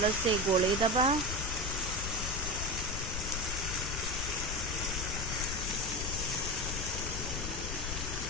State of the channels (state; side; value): noise; left; rumble, 3 dB below the sound